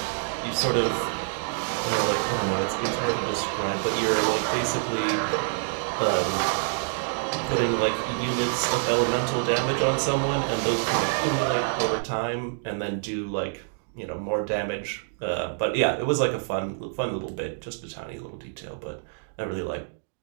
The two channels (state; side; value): silent; left; digital silence